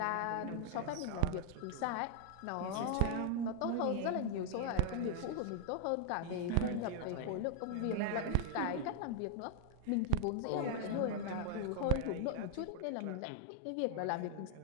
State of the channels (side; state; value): both; different; correlation 0.00